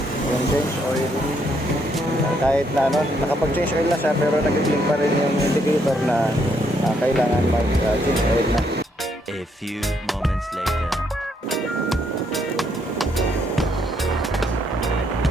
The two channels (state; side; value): normal; both; correlation 0.73